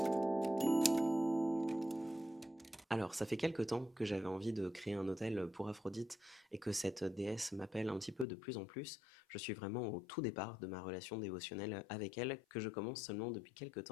Alors, ça fait quelque temps que j'avais envie de créer un hôtel pour Aphrodite et que cette déesse m'appelle un petit peu de plus en plus. Je suis vraiment au tout départ de ma relation dévotionnelle avec elle, que je commence seulement depuis quelque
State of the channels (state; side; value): drops out; right; at 8.2 s